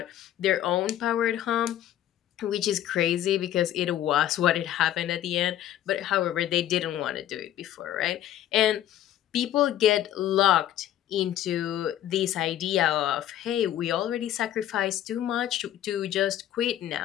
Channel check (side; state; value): right; quieter; 12.0 dB